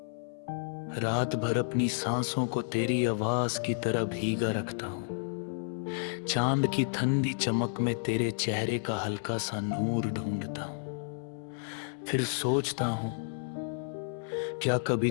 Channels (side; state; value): right; silent; 57 dB below the other